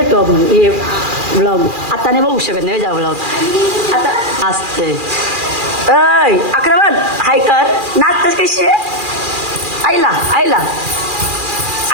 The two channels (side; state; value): left; late; 2.4 ms